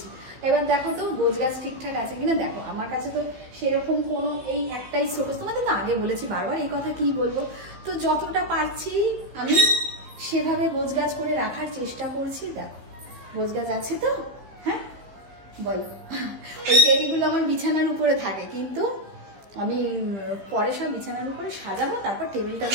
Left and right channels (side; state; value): left; late; 15 ms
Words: এবার দেখো তো গোছ গাছ ঠিকঠাক আছে কিনা। দেখো আমার কাছে তো সেরকম কোনো এই একটাই শোকেস, তোমাদের তো আগে বলেছি বারবার, এই কথা কি বলবো। তো যতটা পারছি আমি সেভাবে গোছ গাছ করে রাখার চেষ্টা করছি। দেখো গোছ গাছ আছে তো? হ্যাঁ বলো। ওই টেডিগুলো আমার বিছানার উপরে থাকে, কিন্তু আমি পরে সব বিছানার উপরে সাজাবো, তারপর টেবিলটার